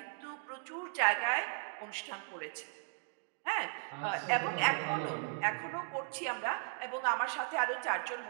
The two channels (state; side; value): silent; left; 53 dB below the other